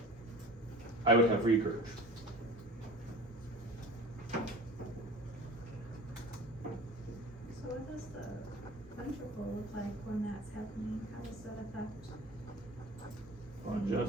I would have regurg. So what does the ventricle look like when that's happening? How does that affect? Hold on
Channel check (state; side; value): normal; both; correlation 0.39